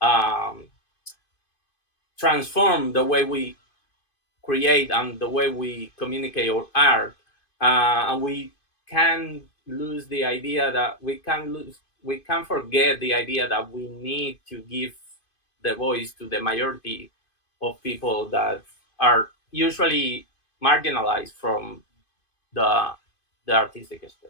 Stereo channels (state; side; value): late; right; 2.5 ms